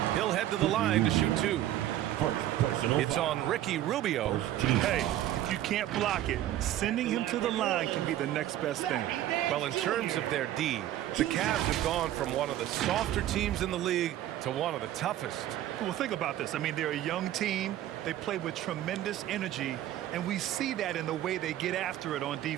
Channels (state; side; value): quieter; left; 13.0 dB